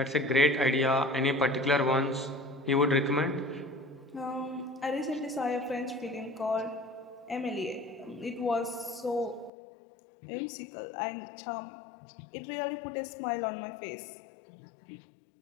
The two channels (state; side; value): drops out; right; at 9.5 s